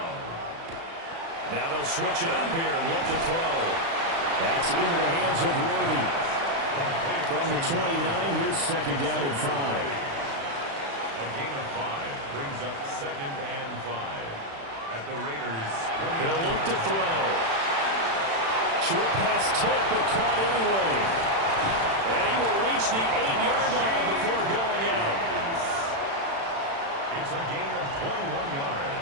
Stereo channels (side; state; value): left; late; 36 ms